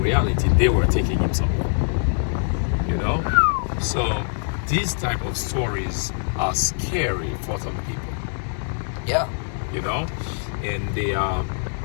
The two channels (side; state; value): right; silent; digital silence